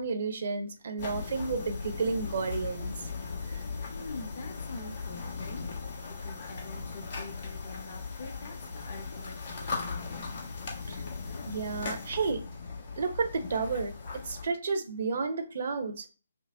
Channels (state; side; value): inverted; both; correlation -0.73